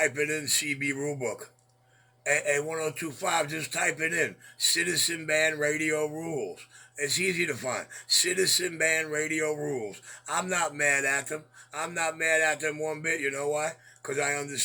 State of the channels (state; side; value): identical; both; correlation 1.00